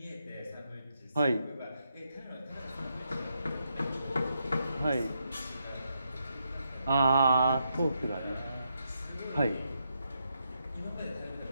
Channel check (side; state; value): both; inverted; correlation -0.80